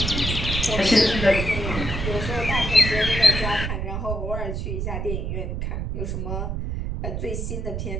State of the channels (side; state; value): right; noise; rumble, 3 dB below the sound